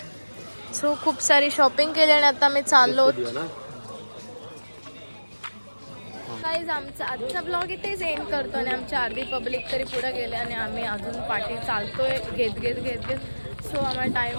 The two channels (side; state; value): both; inverted; correlation -1.00